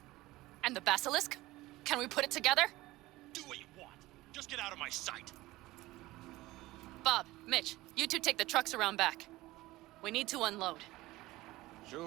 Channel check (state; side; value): quieter; left; 18.4 dB